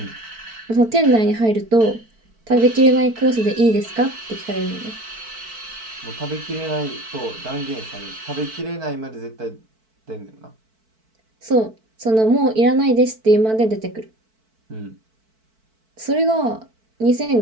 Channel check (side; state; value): left; late; 4.5 ms